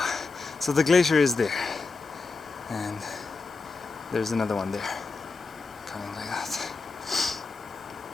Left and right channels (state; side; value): quieter; right; 4.1 dB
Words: So the glacier is there, and there's another one there coming like that.